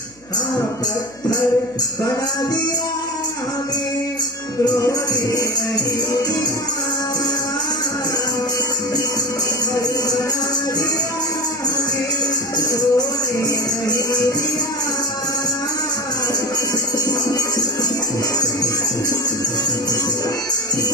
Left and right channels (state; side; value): noise; left; hum, 28 dB below the sound